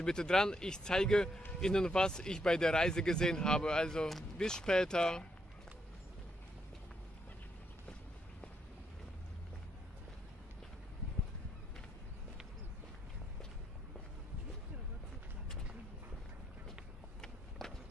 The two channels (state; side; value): normal; both; correlation 0.78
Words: bitte dran, ich zeige Ihnen, was ich bei der Reise gesehen habe. Also bis später.